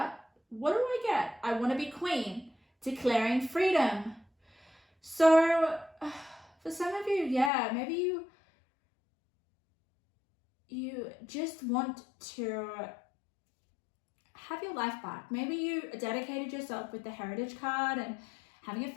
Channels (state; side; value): drops out; right; at 7.5 s